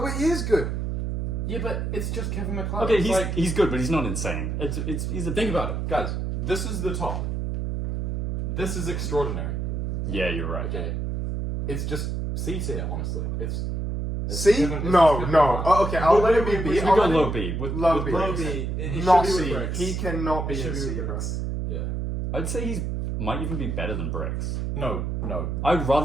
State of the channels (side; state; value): right; noise; hum, 2 dB below the sound